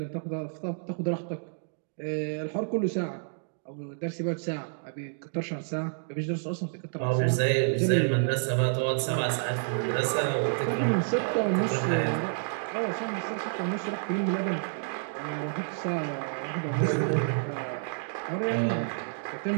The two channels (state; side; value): silent; left; digital silence